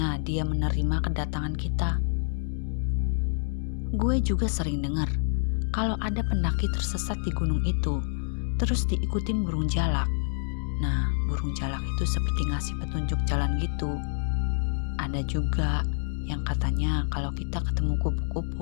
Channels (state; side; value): silent; right; digital silence